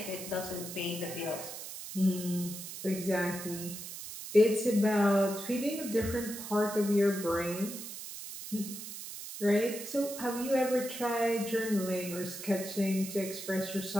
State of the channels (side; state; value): right; noise; hiss, 10 dB below the sound